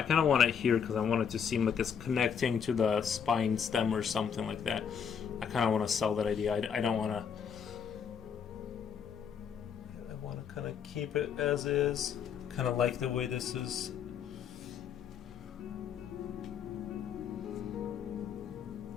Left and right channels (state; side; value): quieter; right; 7.3 dB